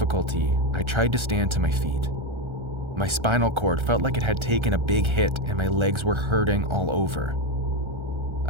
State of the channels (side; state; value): left; late; 1.3 ms